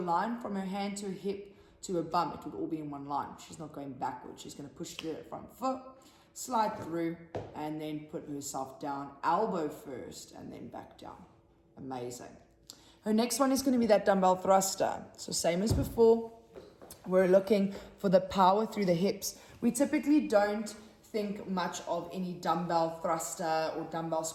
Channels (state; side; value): identical; both; correlation 1.00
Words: from her hand to her hip to her bum, it would all be in one line. She's not going backwards. She's going to push through that front foot, slide through, and then put herself down, elbow first, and then back down. Amazing. Her next one is going to be that dumbbell thruster. So same as before, we're looking for the power through the hips. We typically don't think much of any dumbbell thruster or dumbbell